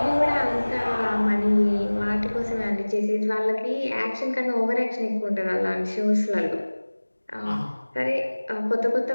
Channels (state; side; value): inverted; both; correlation -1.00